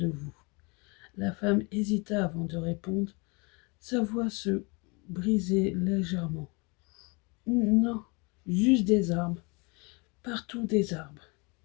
vous? La femme hésita avant de répondre. Sa voix se brisait légèrement. Non, juste des arbres. Partout des arbres.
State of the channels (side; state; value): right; quieter; 29.6 dB